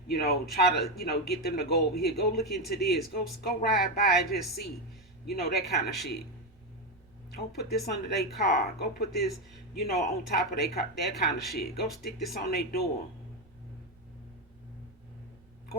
try to, get them to go over here, go look into this, go ride by and just see, that kind of shit. Go put this under their car. Go put this, on top of their car, that kind of shit. Go stick this on their door.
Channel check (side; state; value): right; noise; rumble, 28 dB below the sound